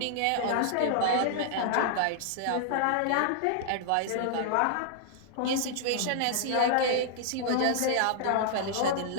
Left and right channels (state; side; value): different; both; correlation -0.01